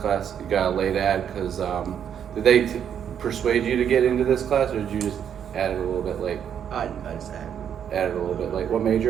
class. You got a late ad because did they persuade you to get into this class, or did you just add it a little bit late? I just Added a little bit late. What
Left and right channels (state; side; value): quieter; left; 8.7 dB